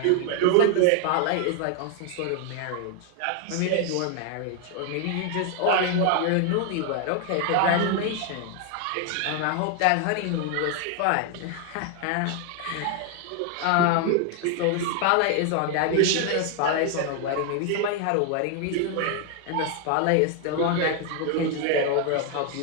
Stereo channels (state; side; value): different; both; correlation 0.00